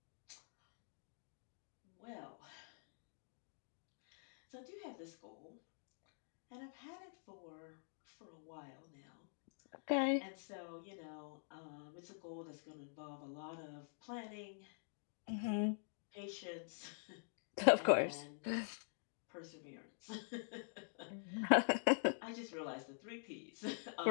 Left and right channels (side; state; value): right; silent; digital silence